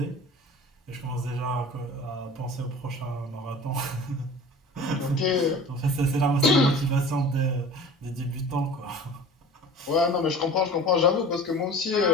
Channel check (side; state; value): both; normal; correlation 0.41